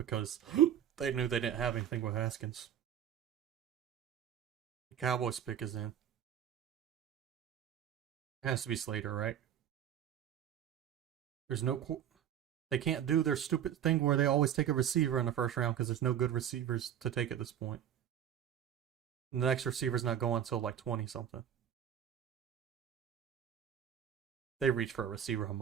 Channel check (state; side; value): quieter; left; 9.8 dB